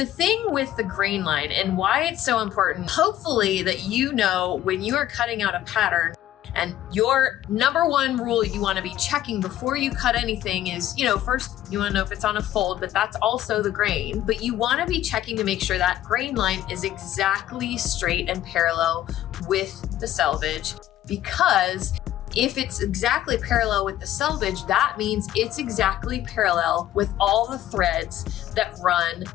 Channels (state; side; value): quieter; right; 12.9 dB